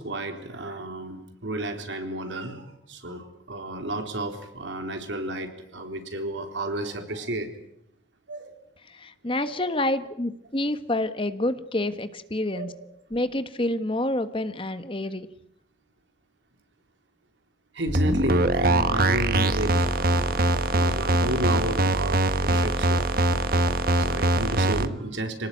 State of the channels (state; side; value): normal; both; correlation 0.44